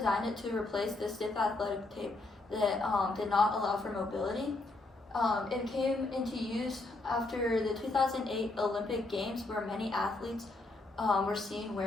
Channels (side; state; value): right; quieter; 3.1 dB